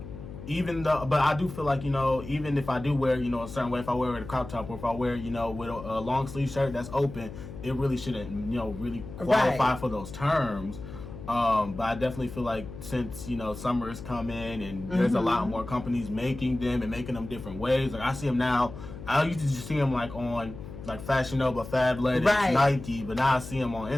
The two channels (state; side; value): noise; left; hum, 12 dB below the sound